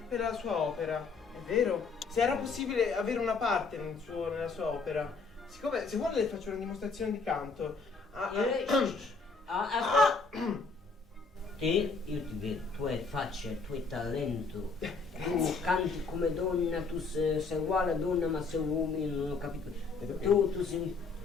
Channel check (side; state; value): right; quieter; 4.5 dB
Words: per la sua opera, è vero? Se era possibile avere una parte nella sua opera. Siccome, se vuole le faccio una dimostrazione di canto. Te, io ti vedo, tu hai faccia, tu hai talento, tu canti come donna, tu sei uguale a donna ma sei uomo, non ho capito. Tu sei